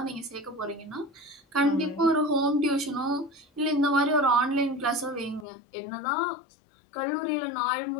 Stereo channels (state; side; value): drops out; right; at 5.5 s